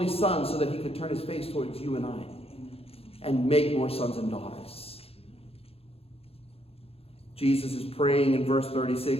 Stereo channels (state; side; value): late; right; 0.28 ms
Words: Son so that he could turn his face towards you and I and make more sons and daughters. Jesus is praying in verse